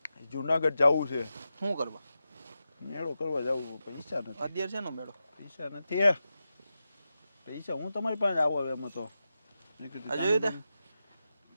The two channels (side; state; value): both; inverted; correlation -0.90